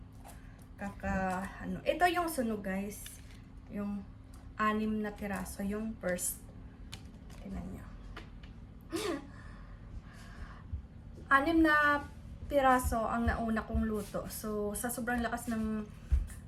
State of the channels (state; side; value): identical; both; correlation 1.00